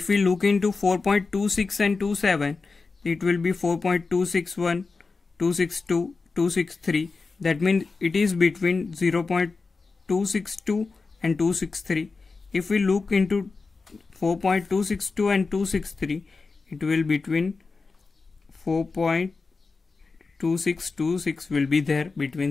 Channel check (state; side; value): quieter; right; 4.2 dB